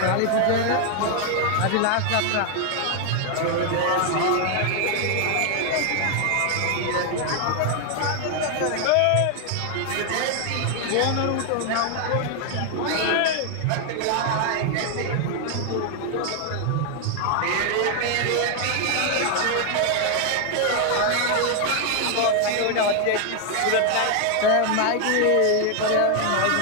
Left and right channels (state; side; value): different; both; correlation 0.00